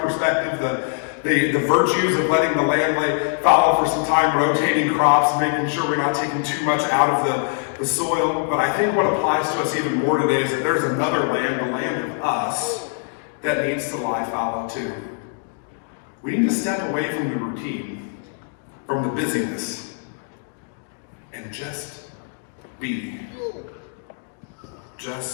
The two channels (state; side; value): silent; right; 57 dB below the other